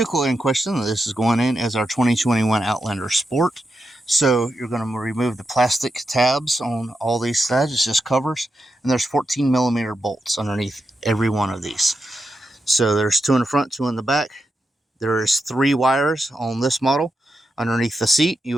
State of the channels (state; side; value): normal; both; correlation 0.87